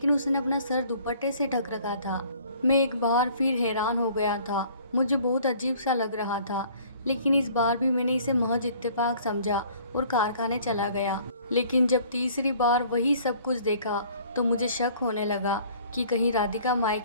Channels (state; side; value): inverted; both; correlation -0.54